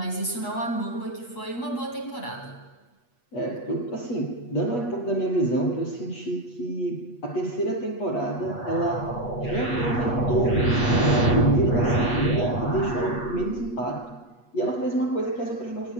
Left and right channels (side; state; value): right; late; 8.3 ms